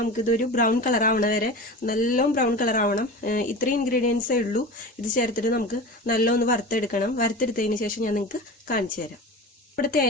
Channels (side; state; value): both; normal; correlation 0.31